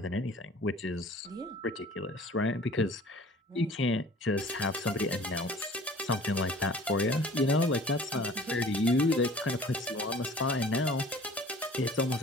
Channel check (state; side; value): normal; both; correlation 0.48